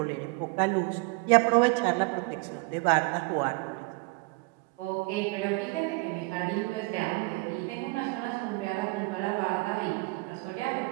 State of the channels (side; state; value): left; quieter; 26.3 dB